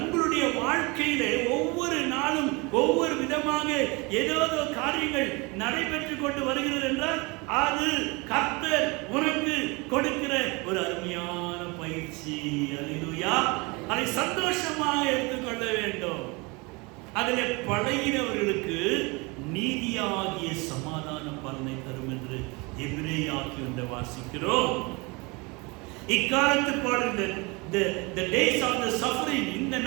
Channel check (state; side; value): quieter; left; 27.0 dB